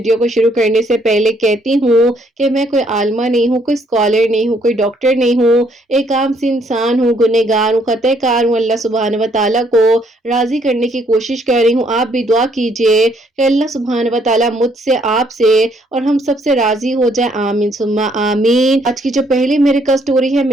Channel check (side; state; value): both; normal; correlation 0.68